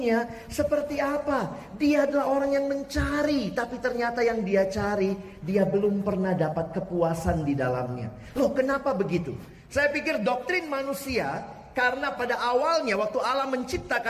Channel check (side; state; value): both; identical; correlation 1.00